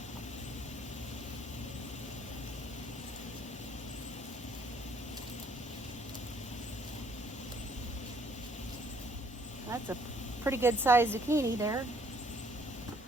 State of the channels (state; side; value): normal; both; correlation 0.63